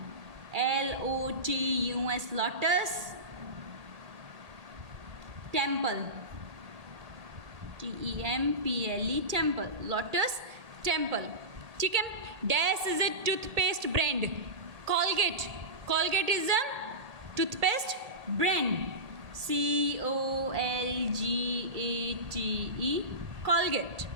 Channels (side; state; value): left; late; 1.8 ms